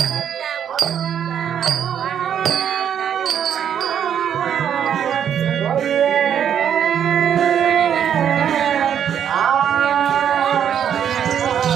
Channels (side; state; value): left; quieter; 8.9 dB